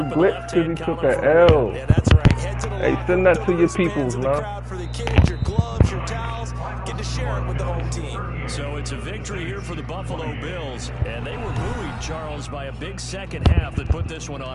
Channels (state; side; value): identical; both; correlation 1.00